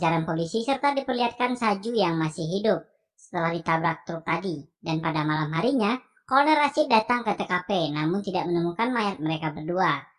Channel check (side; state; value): both; identical; correlation 1.00